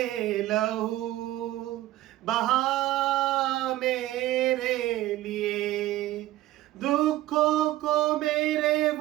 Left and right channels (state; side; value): quieter; left; 15.5 dB